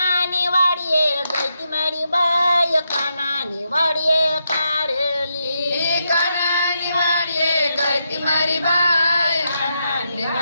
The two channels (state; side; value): inverted; both; correlation -0.83